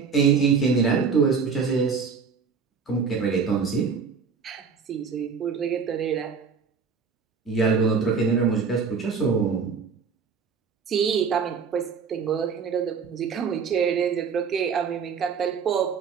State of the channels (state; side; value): quieter; left; 5.7 dB